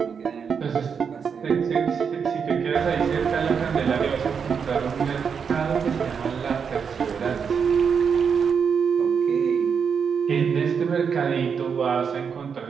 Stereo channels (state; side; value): quieter; left; 6.5 dB